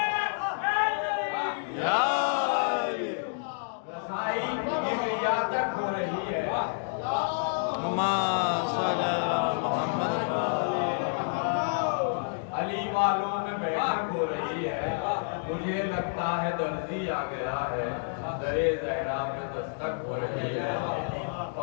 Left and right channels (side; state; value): right; silent; digital silence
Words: رسائی کبریا تک ہو رہی ہے, علی والوں میں بیٹھک ہو رہی ہے. مجھے لگتا ہے درزی آ گیا ہے, درے زہرا میں دستک ہو رہی ہے.